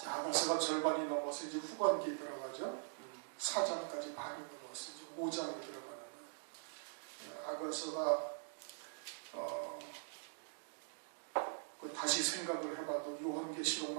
아가서가 절반이 넘어서 이제 후반기에 들어가죠. 4장까지 반이 넘어서 이제 5장에 들어가는 아가서가 다시 생각을 해봐도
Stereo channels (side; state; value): left; silent; digital silence